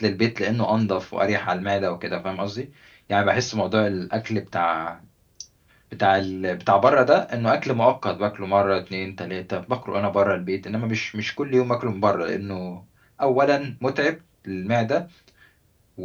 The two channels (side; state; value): both; identical; correlation 1.00